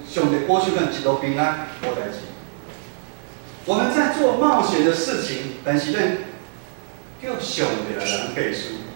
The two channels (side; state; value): left; silent; 64 dB below the other